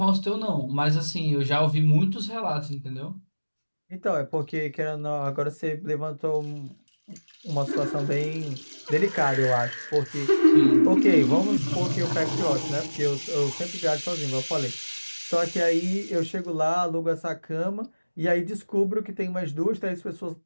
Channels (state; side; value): inverted; both; correlation -1.00